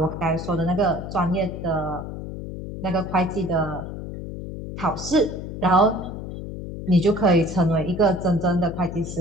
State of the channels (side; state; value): left; noise; hum, 8 dB below the sound